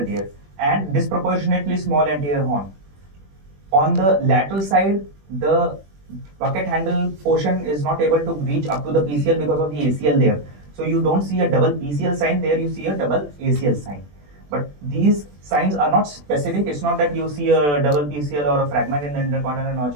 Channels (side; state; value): left; late; 20 ms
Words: tear. And disproportionately small anterior horn. On the lateral side, the bucket handle portion is not able to reach up to the PCL because of the ACL there. So you don't see a double PCL sign there, you see a double ACL sign. But these signs are not specific. It's not that you see a double PCL or a fragment in the intercondylar notch.